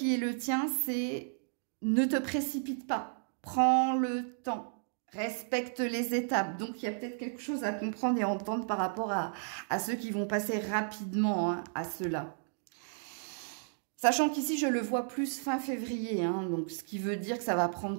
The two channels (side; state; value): left; silent; digital silence